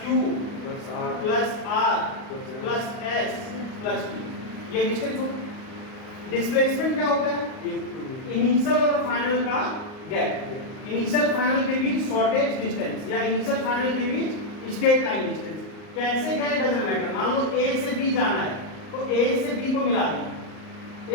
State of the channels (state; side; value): late; right; 38 ms